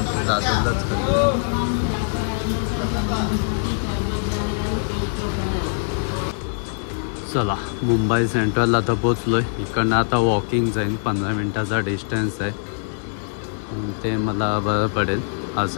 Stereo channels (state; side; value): silent; right; digital silence